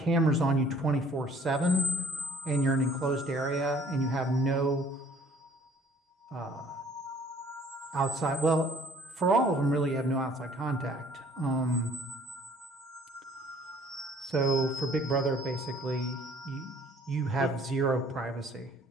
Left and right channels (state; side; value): normal; both; correlation 0.57